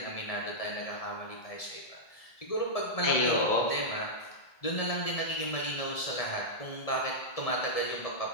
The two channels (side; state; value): right; late; 1.7 ms